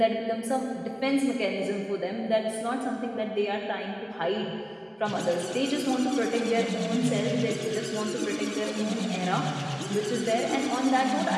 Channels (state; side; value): identical; both; correlation 1.00